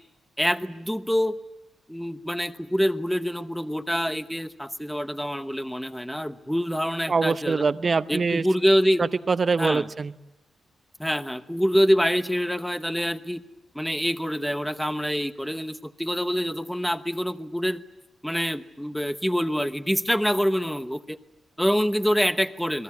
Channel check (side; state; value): both; normal; correlation 0.98